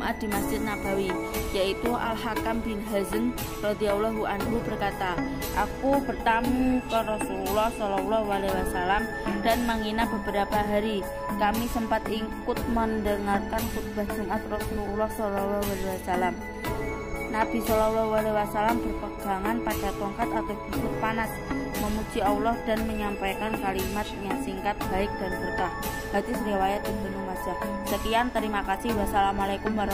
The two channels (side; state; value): both; identical; correlation 1.00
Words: di Masjid Nabawi, yaitu Al-Hakam bin Hazm radhiyallahu anhu berkata, "Aku bertamu ke Rasulullah SAW dan menginap beberapa hari. Kami sempat ikut mendengarkan khutbah Jumat Rasulullah SAW. Nabi SAW berpegangan pada tongkat atau busur panas, memuji Allah dan menyampaikan kalimat yang singkat, baik dan berkah." Hadis riwayat Ibnu Majah. Sekian, terima kasih. Wassalamualaikum